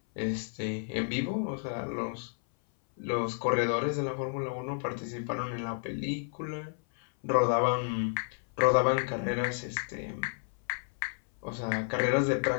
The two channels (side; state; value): right; silent; 57 dB below the other